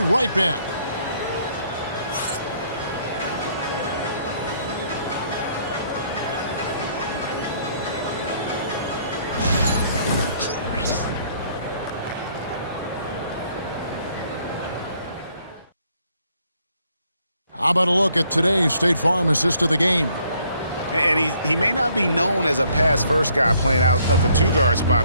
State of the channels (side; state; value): both; inverted; correlation -0.66